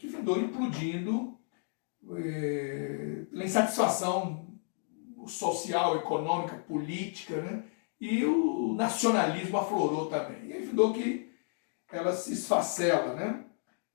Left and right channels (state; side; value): silent; right; 56 dB below the other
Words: findou implodindo pela insatisfação social, econômica, política, né, e o nacionalismo aflorou também. E aí findou que ela se esfacela, né,